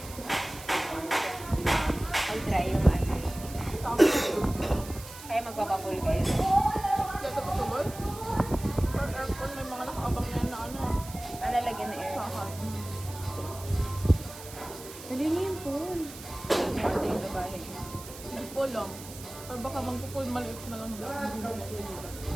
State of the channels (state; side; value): noise; right; hiss, 15 dB below the sound